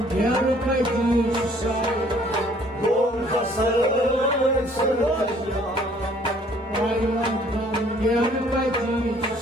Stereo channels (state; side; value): normal; both; correlation 0.59